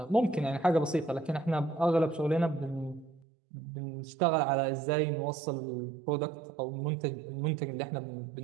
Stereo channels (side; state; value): left; drops out; at 3.2 s